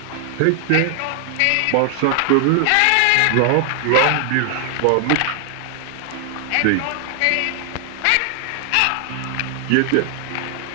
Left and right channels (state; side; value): different; both; correlation 0.00